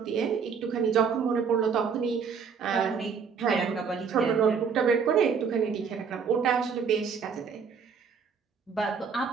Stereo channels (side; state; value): left; quieter; 6.1 dB